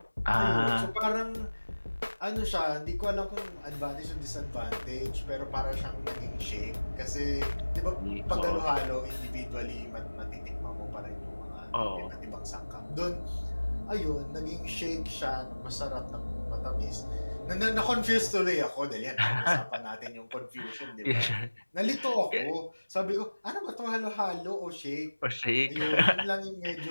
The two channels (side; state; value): both; inverted; correlation -1.00